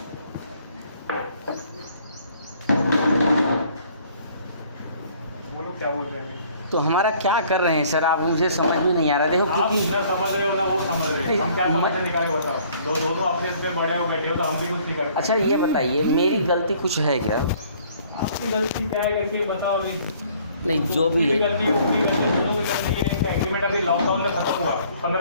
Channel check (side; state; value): both; inverted; correlation -0.58